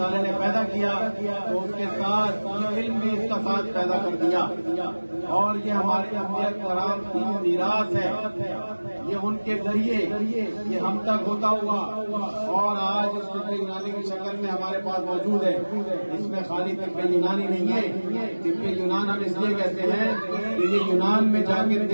نے پیدا کیا تو اس کے ساتھ علم بھی اس کا ساتھ پیدا کر دیا، اور یہ ہمارے انبیاء کرام کی میراث ہے. یہ ان کے ذریعے یہ ہم تک ہوتا ہوا اور آج اس طب یونانی کی شکل میں ہمارے پاس موجود ہے. اس میں خالی طب یونانی نہیں ہے، طب یونان ہم اس لیے کہتے ہیں کہ یہ یونان میں جا کے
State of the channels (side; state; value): both; inverted; correlation -1.00